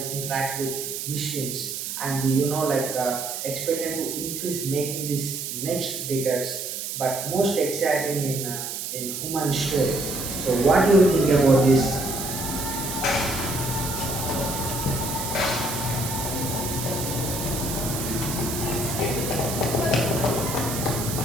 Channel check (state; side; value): noise; right; hiss, 5 dB below the sound